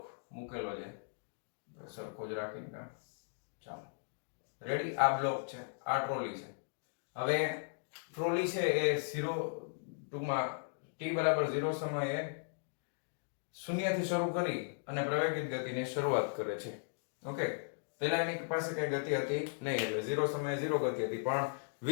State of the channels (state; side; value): silent; right; digital silence